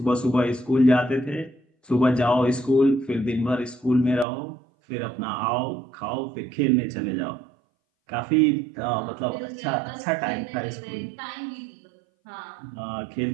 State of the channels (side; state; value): left; drops out; at 4.2 s